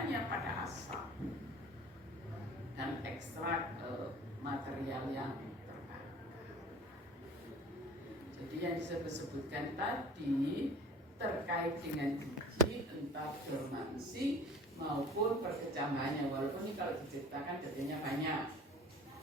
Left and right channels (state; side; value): normal; both; correlation 0.44